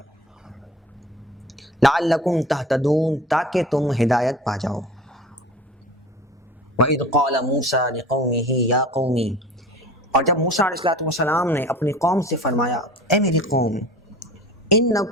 لعلکم تہتدون، تاکہ تم ہدایت پا جاؤ۔ وَإِذْ قَالَ مُوسَىٰ لِقَوْمِهِ يَا قَوْمِ، اور جب موسیٰ علیہ السلام نے اپنی قوم سے فرمایا، اے میری قوم،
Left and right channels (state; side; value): normal; both; correlation 0.40